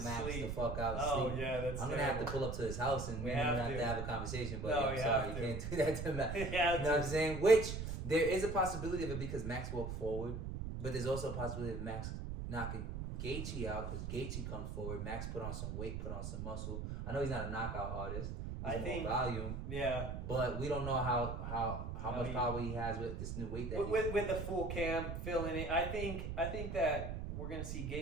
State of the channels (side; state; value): right; noise; rumble, 5 dB below the sound